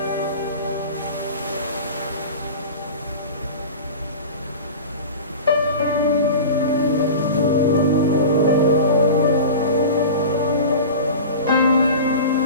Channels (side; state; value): both; inverted; correlation -0.33